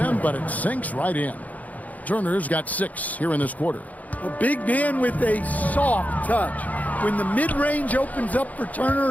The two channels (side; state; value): right; late; 0.076 ms